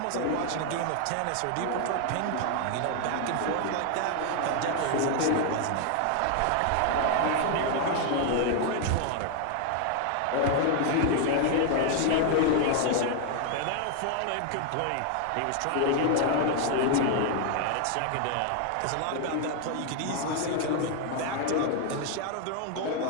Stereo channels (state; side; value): different; both; correlation 0.00